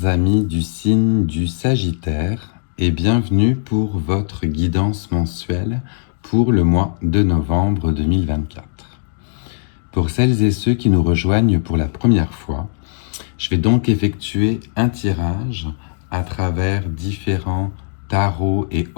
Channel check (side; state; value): right; silent; digital silence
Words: amis du signe du Sagittaire, et bienvenue pour votre guidance mensuelle pour le mois de novembre 2024. Pour celles et ceux qui nous rejoignent pour la première fois, je vais donc effectuer un tirage à travers différents tarots et